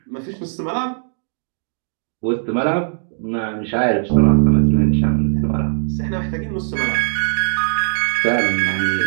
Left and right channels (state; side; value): silent; left; digital silence